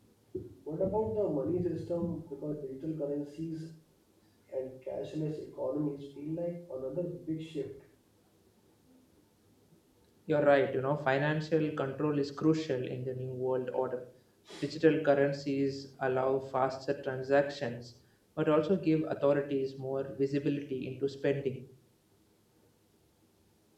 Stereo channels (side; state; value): both; identical; correlation 1.00